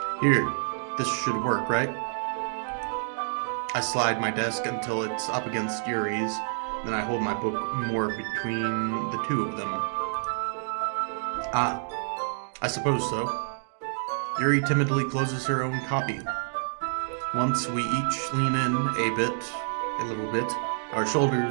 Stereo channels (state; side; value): silent; left; digital silence